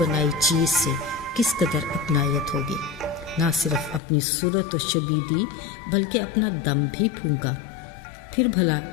चीज़ से किस कदर अपनायत होगी। ना सिर्फ अपनी सूरत और शबीह दी, बल्कि अपना दम भी फूंका। फिर भला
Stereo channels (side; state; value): right; drops out; at 4.0 s